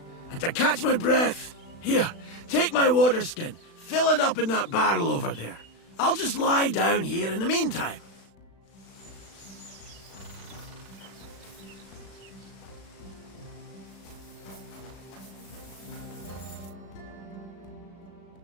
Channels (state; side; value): late; right; 36 ms